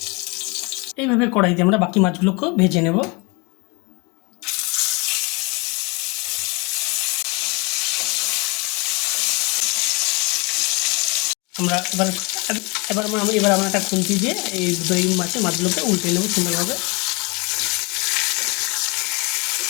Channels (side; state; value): right; quieter; 28.5 dB